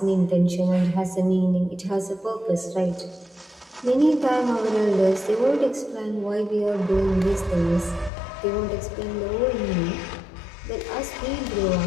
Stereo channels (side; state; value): right; drops out; at 8.1 s